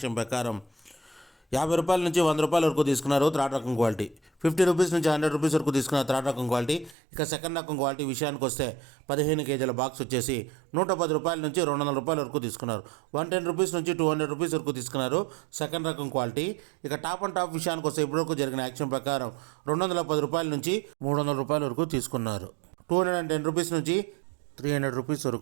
ప్రకారం 50 రూపాయల నుంచి 100 రూపాయల వరకు తీసుకున్నారు థర్డ్ రకం క్వాలిటీ. 50 రూపీస్ నుంచి 100 రూపీస్ వరకు తీసుకున్నారు థర్డ్ రకం క్వాలిటీ. ఇక సెకండ్ రకం క్వాలిటీ విషయానికి వస్తే 15 kgల బాక్స్ వచ్చేసి 110 రూపాయల నుంచి 200 రూపాయల వరకు తీసుకున్నారు. 110 రూపీస్ నుంచి 200 రూపీస్ వరకు తీసుకున్నారు సెకండ్ రకం క్వాలిటీ. ఇక టాప్ అండ్ టాప్ విషయానికి వస్తే ఇప్పటివరకు జరిగిన యాక్షన్ ప్రకారం 210 రూపాయల నుంచి 300 రూపాయల వరకు తీసుకున్నారు. 210 రూపీస్ నుంచి 300 రూపీస్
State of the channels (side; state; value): left; drops out; at 7.0 s